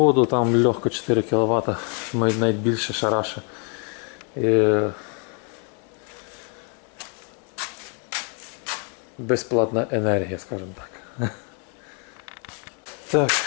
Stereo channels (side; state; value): right; quieter; 38.7 dB